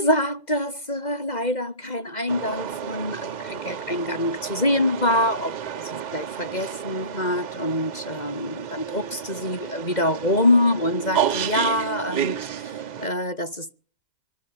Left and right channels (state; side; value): late; right; 2.0 ms